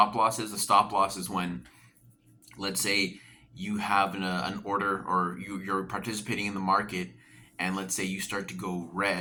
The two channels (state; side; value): identical; both; correlation 1.00